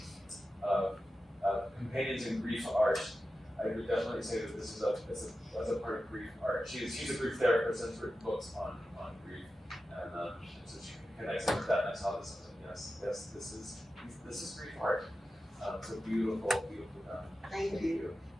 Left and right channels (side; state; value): both; normal; correlation 0.92